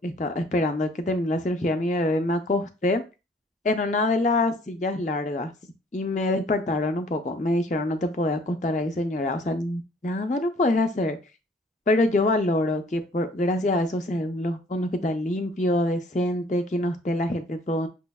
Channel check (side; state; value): both; normal; correlation 0.58